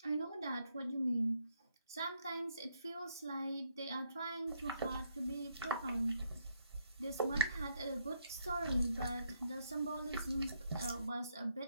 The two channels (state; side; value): inverted; both; correlation -0.74